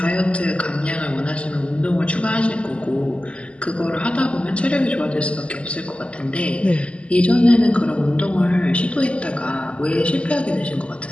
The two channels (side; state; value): right; late; 0.057 ms